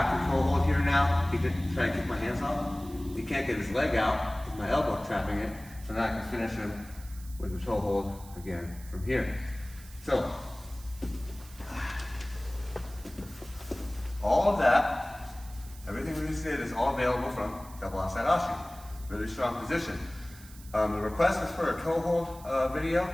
to toe hold here now. He could try to kick my hands off. He can't get his leg out because my elbow trapping it. So now I can finish him with the toe hold again from here. So, all of that, everything we just did is all available from double outside ashi. Really strong position. The request was for a toe hold video.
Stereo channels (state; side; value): noise; right; hiss, 20 dB below the sound